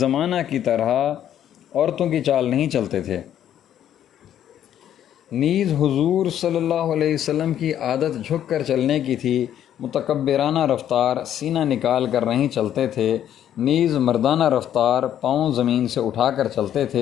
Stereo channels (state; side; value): quieter; right; 10.6 dB